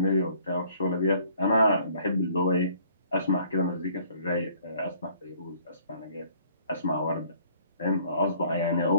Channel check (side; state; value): both; inverted; correlation -0.60